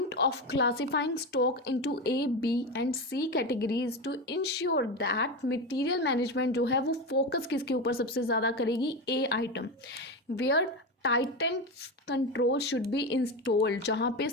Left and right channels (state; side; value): normal; both; correlation 0.18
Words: of classifying stock into A, B and C categories to ensure that material management जो है वो फोकस किसके ऊपर सबसे ज़्यादा करेगी, A item, where tightest control should be installed, जहाँ पे